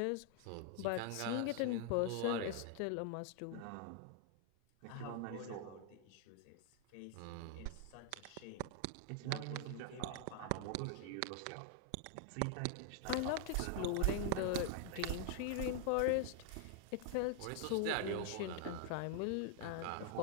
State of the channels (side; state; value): both; different; correlation 0.00